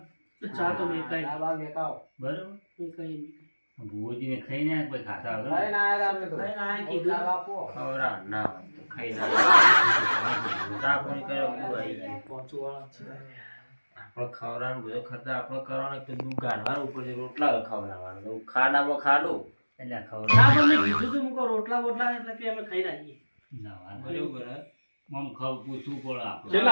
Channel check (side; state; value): both; inverted; correlation -1.00